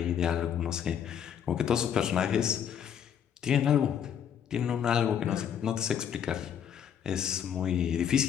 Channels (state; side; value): quieter; right; 8.7 dB